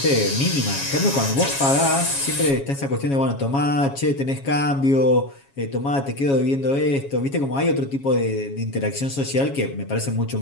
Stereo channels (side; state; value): right; late; 7.3 ms